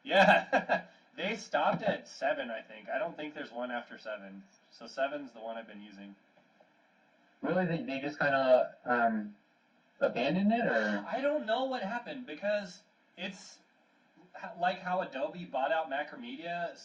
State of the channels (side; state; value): both; identical; correlation 1.00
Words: Yeah, they stopped at 7, I think. I don't think there's one after 7. So 7's the one I've been using. Really, they just kind of abandoned it, or? I don't know what happened, because it's like how Adobe bought out Macromedia,